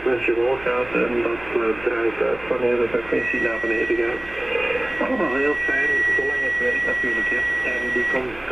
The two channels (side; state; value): right; noise; hum, 19 dB below the sound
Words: omhoog gaat en dat draait uit wanneer de frequentie naar beneden gaat. Allemaal heel fijn, zolang het werkt natuurlijk. En die